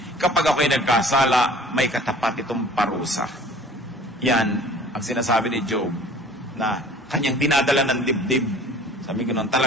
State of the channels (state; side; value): normal; both; correlation 0.49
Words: Kapag ako'y nagkasala, may katapat itong parusa. Yan ang sinasabi ni Job na kanyang dinadala ng dibdib. Sabi ko nun,